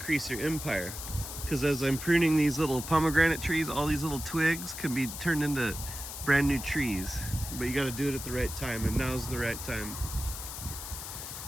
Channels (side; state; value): left; noise; hiss, 8 dB below the sound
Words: your empire. Because as I'm pruning these little pomegranate trees, all these little twigs can be turned into brand new trees. But you got to do it at the right time, and now's the right time.